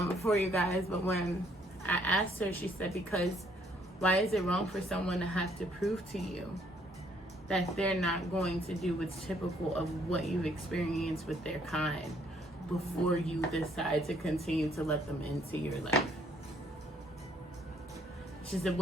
for you guys. But when I asked her, she said, because why is it wrong for someone to have to prove to you that they're not going to do what's typical of what you've experienced with their kind before you decide to continue to let them into your life? She said,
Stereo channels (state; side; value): normal; both; correlation 0.66